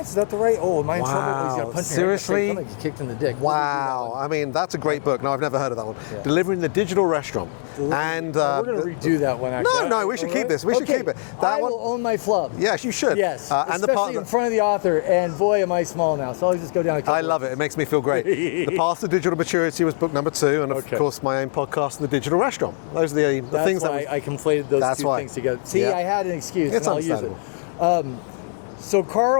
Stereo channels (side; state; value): right; silent; 64 dB below the other